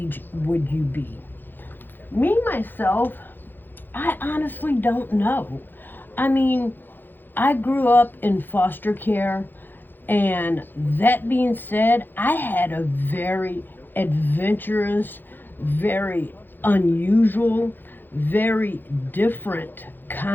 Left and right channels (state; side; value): late; right; 0.093 ms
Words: would you be? Me, myself, I honestly don't know. I mean, I grew up in foster care, and that being said, I had a very adventurous, very unusual, very different